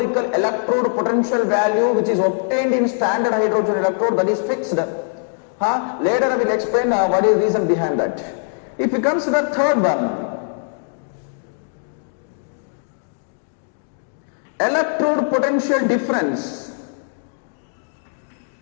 electrode potential value which is obtained in standard hydrogen electrode, that is fixed. Later I will explain what is the reason behind that. If you consider third one, electrode potential difference.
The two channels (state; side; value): silent; right; digital silence